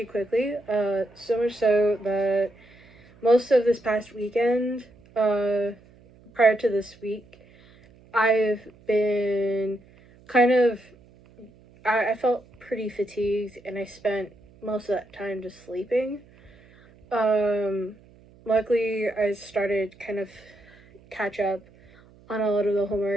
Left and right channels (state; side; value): noise; right; hum, 27 dB below the sound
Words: quickly, so much so that most of this past weekend, prior to this week, I've been kind of I felt pretty fatigued, and I spent most of that time just sleeping. Luckily, I started kind of catch up on a lot of the